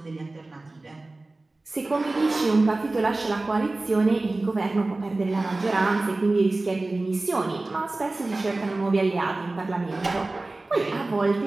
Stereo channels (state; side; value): quieter; left; 3.1 dB